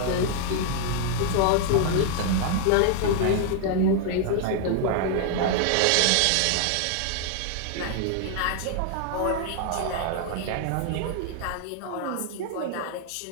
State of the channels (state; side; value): different; both; correlation 0.00